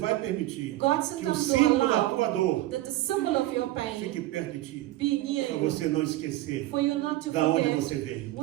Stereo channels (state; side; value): quieter; left; 16.4 dB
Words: permitir God que o sometimes símbolo will da tua allow dor that the symbol of your fique pain perto de ti, be near para you, você não esquecer for you not to da onde forget você veio.